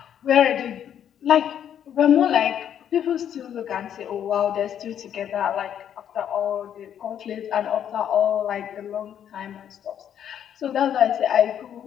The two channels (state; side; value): quieter; right; 9.5 dB